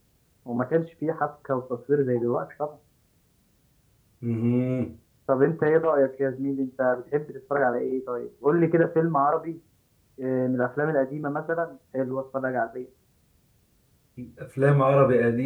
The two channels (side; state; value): both; identical; correlation 1.00